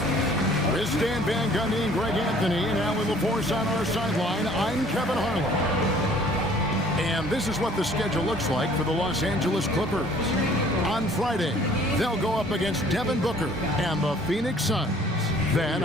With Stan Van Gundy and Greg Anthony and Alan LaForce on our sideline, I'm Kevin Harlan. And this is what the schedule looks like for the Los Angeles Clippers. On Friday, they'll go up against Devin Booker and the Phoenix Suns. Then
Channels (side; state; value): both; normal; correlation 0.55